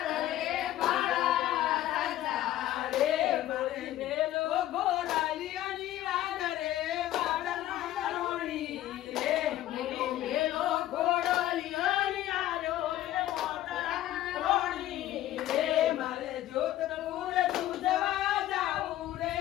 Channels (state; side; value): quieter; right; 13.8 dB